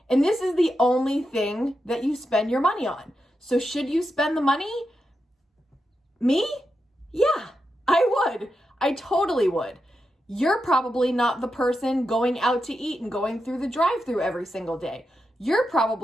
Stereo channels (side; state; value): both; normal; correlation 0.87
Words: And this is the only thing that you spend your money on. So should you spend the money? Me? Yeah, I would. I totally would. You're probably not the person going out to eat and going through the drive-thru every single day. You're